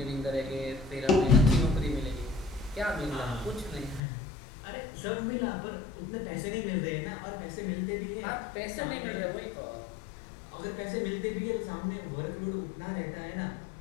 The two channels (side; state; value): right; drops out; at 4.0 s